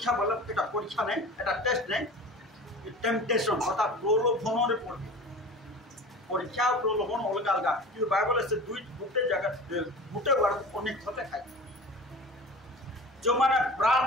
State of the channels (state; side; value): normal; both; correlation 0.36